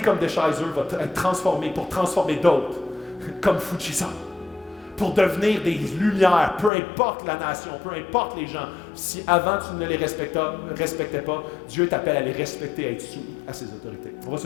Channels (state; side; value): drops out; right; at 6.7 s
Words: Deschizer va être transformée pour transformer d'autres, comme Fujisan. pour devenir des lumières, peu importe la nation, peu importe les gens. Si avant tu ne les respectais pas, Dieu t'appelle à les respecter, à être soumis à ses autorités. On va